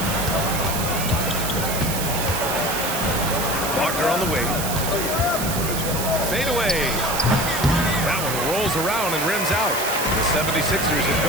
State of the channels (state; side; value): noise; right; hiss, 4 dB below the sound